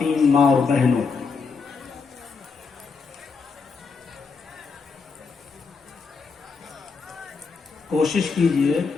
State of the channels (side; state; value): right; quieter; 4.9 dB